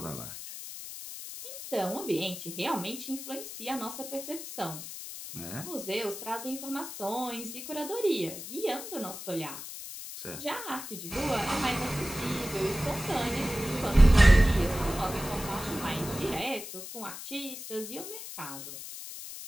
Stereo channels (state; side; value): noise; left; hiss, 10 dB below the sound